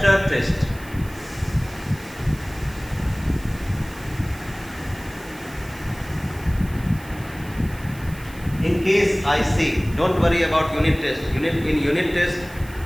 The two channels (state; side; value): noise; right; hiss, 20 dB below the sound